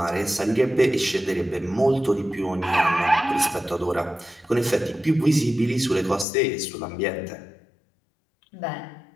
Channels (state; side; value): drops out; right; at 6.2 s